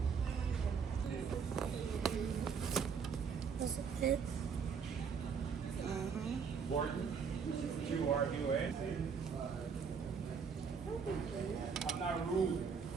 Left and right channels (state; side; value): quieter; left; 6.2 dB